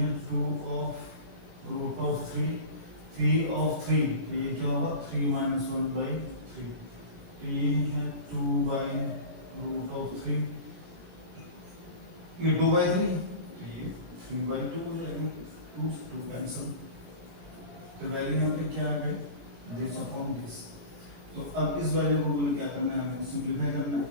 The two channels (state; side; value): late; left; 17 ms